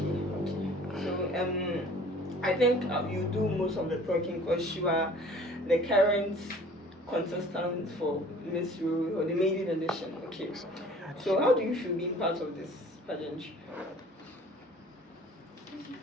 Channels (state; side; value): normal; both; correlation 0.50